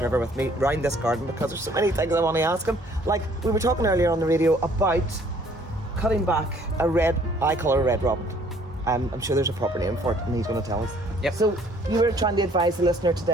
with me around this garden because there's so many things I want to ask him. Like, we were talking earlier on the radio about cutting back I call it a red robin. I'm sure there's a proper name for it, and he's going to tell us. Yep. So you were trying to advise the listener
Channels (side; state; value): both; normal; correlation 0.59